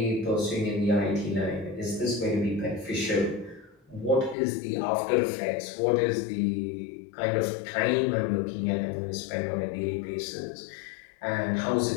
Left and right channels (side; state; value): right; drops out; at 4.4 s